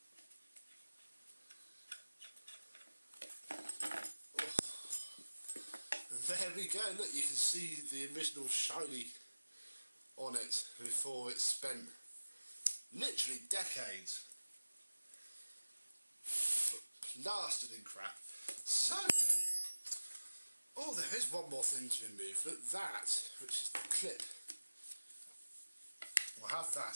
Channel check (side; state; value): both; inverted; correlation -1.00